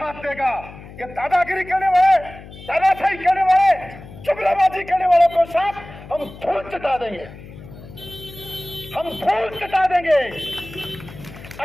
देगा। ये दादागिरी करने वाले, दादाशाही करने वाले, जुमलाबाजी करने वालों को साथ हम धूल चटा देंगे, हम धूल चटा देंगे।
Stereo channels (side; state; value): left; noise; hum, 16 dB below the sound